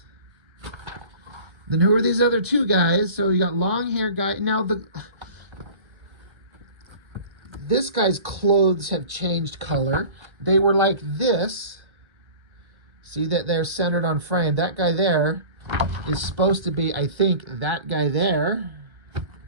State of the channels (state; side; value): late; left; 1.3 ms